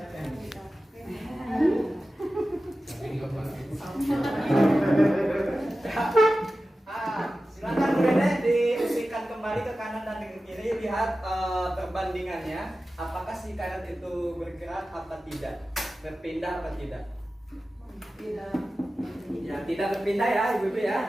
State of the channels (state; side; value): normal; both; correlation 0.94